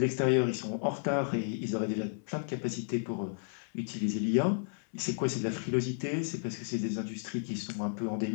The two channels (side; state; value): right; silent; digital silence